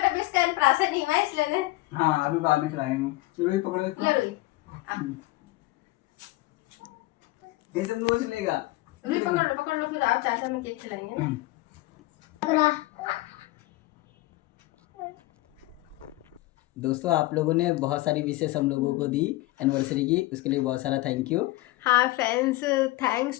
अभी इसका अन्नप्राशन नहीं हुआ इसलिए। हाँ अभी बाद में खिलाएंगे। रोई पकड़ो इसको। ले रोई, ये सब नोच लेगा। रोई पकड़ लो फिर आप चाचा में केक खिलाएंगे ना। दोस्तों आप लोगों ने बहुत सारी विशेष हम लोगों को दी एनिवर्सरी की, उसके लिए बहुत सारा थैंक यू। हाँ friends,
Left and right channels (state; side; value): quieter; right; 19.4 dB